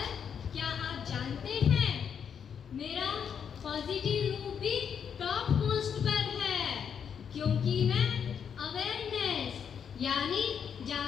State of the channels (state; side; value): quieter; right; 7.5 dB